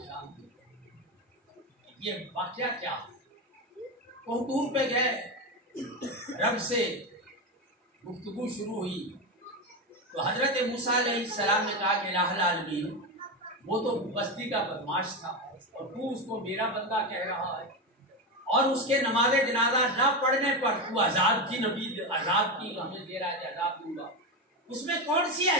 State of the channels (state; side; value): normal; both; correlation 0.15